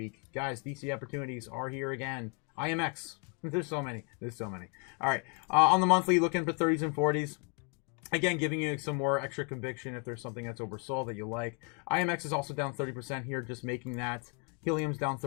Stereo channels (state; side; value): quieter; right; 36.6 dB